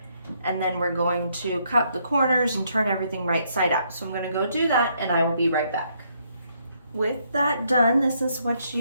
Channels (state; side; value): inverted; both; correlation -0.72